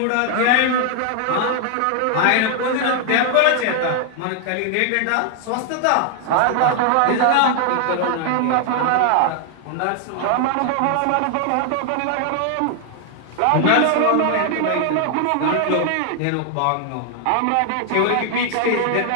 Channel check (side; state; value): both; different; correlation 0.00